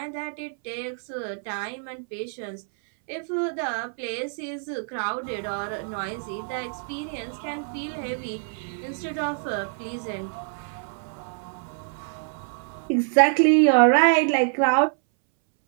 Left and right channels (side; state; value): left; silent; 61 dB below the other